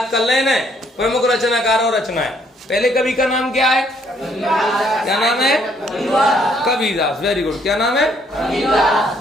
कर लेना प्रमुख रचनाकार और रचनाएं। पहले कवि का नाम क्या है? क्या नाम है? कबीरदास। Very good. क्या नाम है?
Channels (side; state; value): both; normal; correlation 0.67